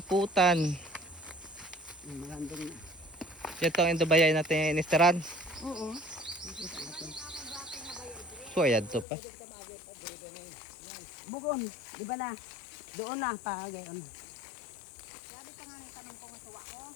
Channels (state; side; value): drops out; right; at 9.1 s